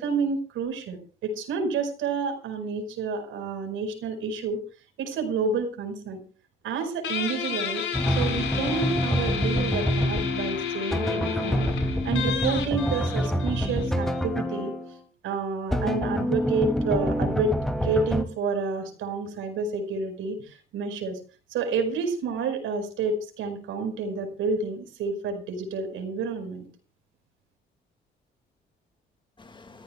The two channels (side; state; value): both; normal; correlation 0.51